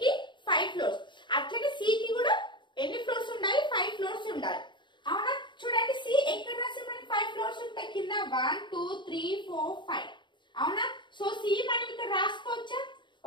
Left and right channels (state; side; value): late; right; 0.23 ms